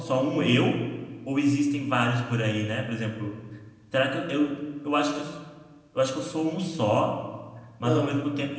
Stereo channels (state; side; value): identical; both; correlation 1.00